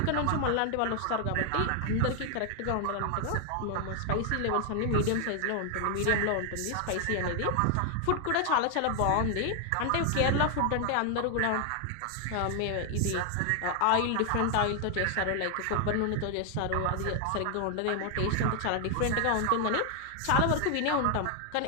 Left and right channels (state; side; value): different; both; correlation 0.00